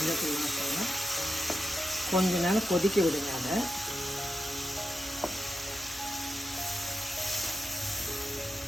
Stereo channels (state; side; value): normal; both; correlation 0.87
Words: வாசனை. கொஞ்ச நேரம் கொதிக்க விடுங்க. அதை